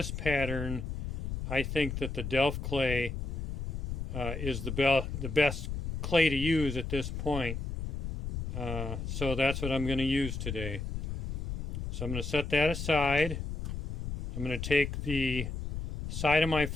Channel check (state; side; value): noise; left; rumble, 5 dB below the sound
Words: pattern I think that the Delft clay is the best clay to use at this point. So that's what I'm going to use today. So I'm going to set that aside. I'm going to take the side of my